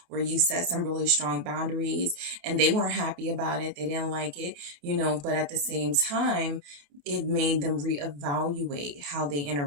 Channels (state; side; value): late; left; 28 ms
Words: where you set some really strong boundaries and they weren't happy about it. They didn't like it, you know, but at the same time, it made them reevaluate how they